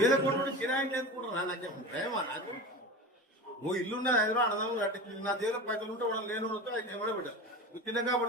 కోట్లు కిరాయి చేసుకుంటున్నా నాకేం భయమా? నాకు ఓ ఇల్లున్నా హైదరాబాద్ అడదాము కట్టి నా దేవుల పైసలు ఉంటే వాళ్ళు లేని ఎవడో బిడ్డ చిన్నగా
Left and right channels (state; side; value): normal; both; correlation 0.29